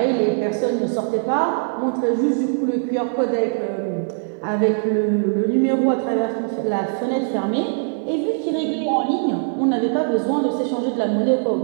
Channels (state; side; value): silent; left; 65 dB below the other